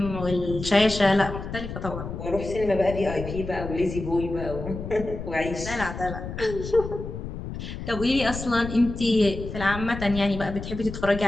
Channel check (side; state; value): left; noise; rumble, 8 dB below the sound